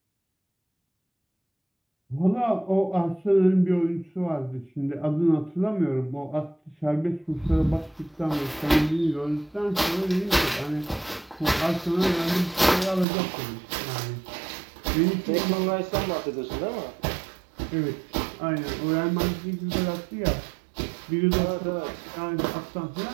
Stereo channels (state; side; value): drops out; left; at 13.1 s